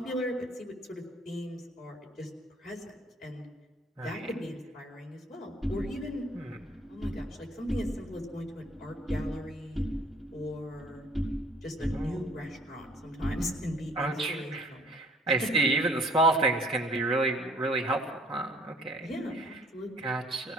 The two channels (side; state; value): both; normal; correlation 0.57